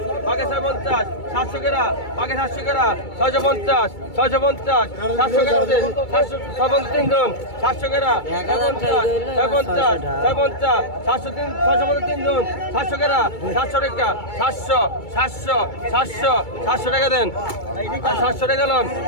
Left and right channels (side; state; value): right; late; 2.3 ms